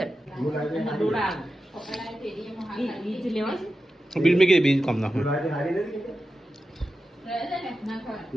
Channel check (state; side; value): normal; both; correlation 0.92